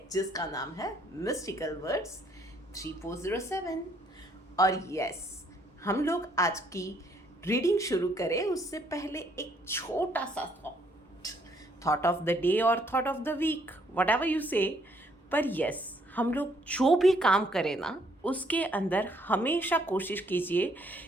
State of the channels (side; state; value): both; normal; correlation 0.67